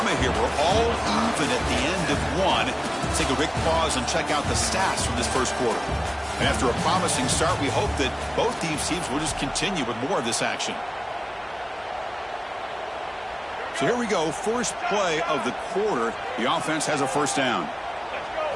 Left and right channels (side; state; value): both; identical; correlation 1.00